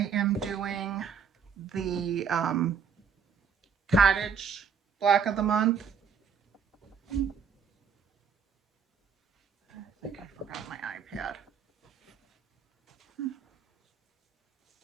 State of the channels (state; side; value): quieter; left; 6.7 dB